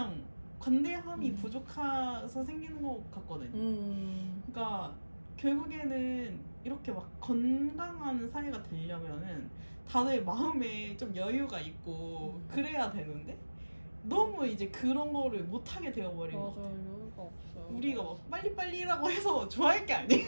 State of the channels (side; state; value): both; inverted; correlation -1.00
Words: 관대함이 부족해서 생기는 것 같거든요. 그러니까 결국에는 이렇게 막 건강한 사회가 되려면은 다들 마음에 좀 여유가 있고 그래야 되는데 너무 이제 그런 거를 못하게 되어버린 것 같아요. 여유가 없어요. 우리가 막 빨리빨리라고 해서 좋아할 게